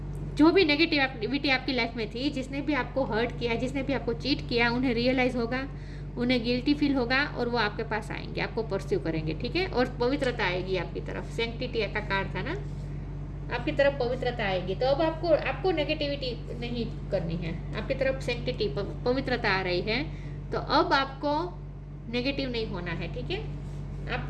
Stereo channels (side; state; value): both; identical; correlation 1.00